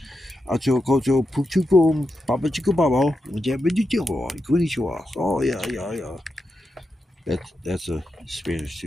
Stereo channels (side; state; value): both; normal; correlation 0.87